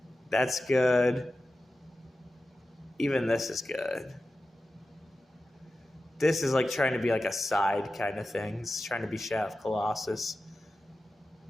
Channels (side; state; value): both; normal; correlation 0.94